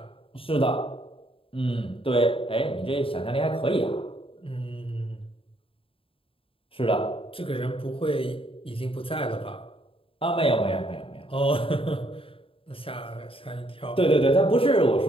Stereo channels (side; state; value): right; late; 0.27 ms